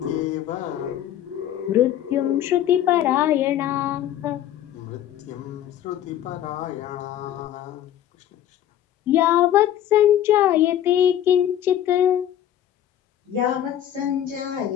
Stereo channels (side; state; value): right; quieter; 11.3 dB